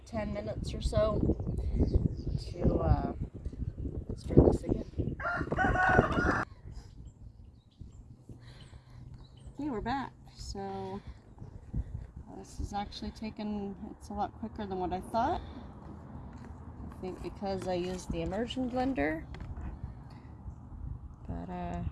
10 minutes or so to stir this again. Okay, we're back. So this is actually it's a lot quicker than what I thought. I think because I used the immersion blender. But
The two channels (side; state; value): both; identical; correlation 1.00